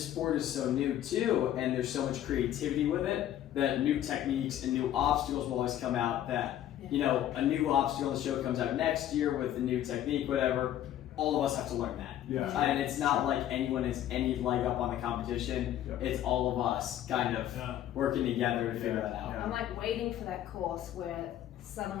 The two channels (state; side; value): quieter; right; 11.8 dB